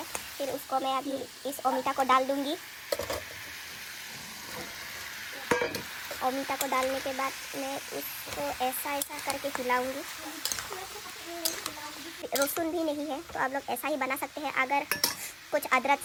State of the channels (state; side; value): identical; both; correlation 1.00